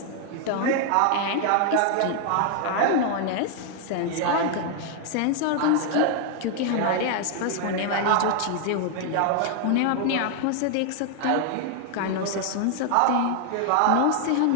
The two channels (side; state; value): both; different; correlation 0.00